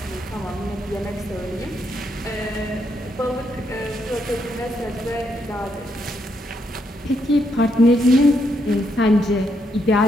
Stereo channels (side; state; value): both; normal; correlation 0.77